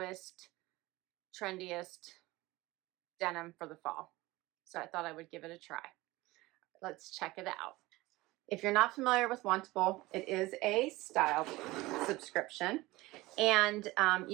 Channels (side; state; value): left; quieter; 20.0 dB